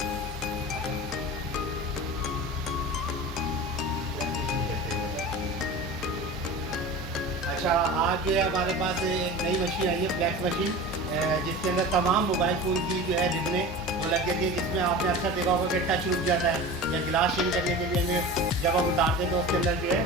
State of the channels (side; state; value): both; normal; correlation 0.33